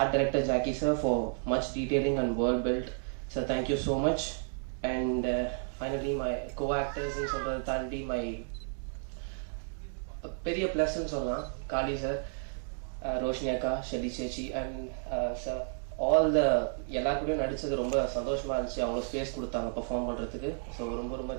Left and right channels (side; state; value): left; silent; 56 dB below the other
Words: director Jackie sir for much detailing and world built. So thank you so much. And finally my co-actors in சொல்றது தாண்டி my பெரிய பிளஸ் சொல்லலாம் காளி சார், ரோஷினி அக்கா, ஷெலி சேச்சி அண்ட் சார் ஆல் த எல்லாருக்கூடயும் நடிச்சது ரொம்ப சந்தோஷமா இருந்துச்சு. அவங்க ஸ்பேஸ் கொடுத்தாங்க பர்ஃபார்ம் பண்றதுக்கு. ஸோ ரொம்ப ரொம்ப